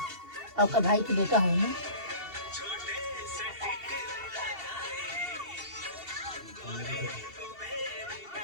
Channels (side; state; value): left; late; 2.7 ms